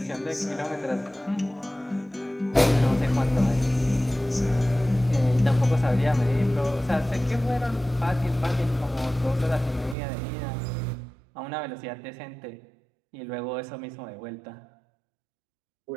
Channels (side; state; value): left; drops out; at 10.0 s